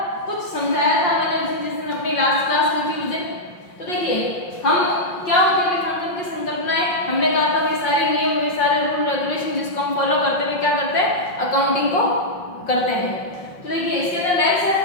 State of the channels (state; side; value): late; right; 5.6 ms